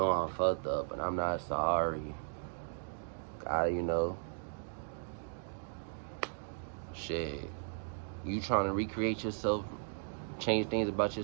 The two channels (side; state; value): left; silent; digital silence